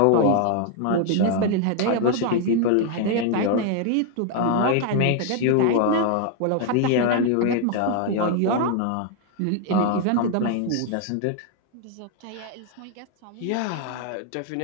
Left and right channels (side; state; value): both; different; correlation 0.00